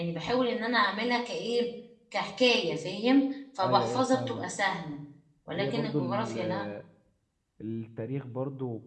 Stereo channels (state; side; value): identical; both; correlation 1.00